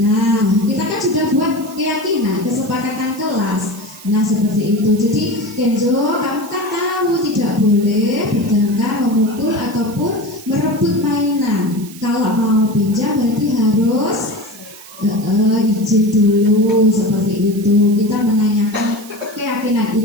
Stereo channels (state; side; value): noise; right; hiss, 18 dB below the sound